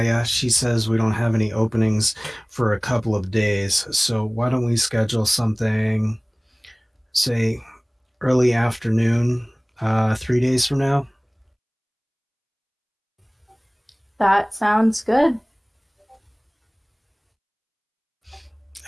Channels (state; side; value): identical; both; correlation 1.00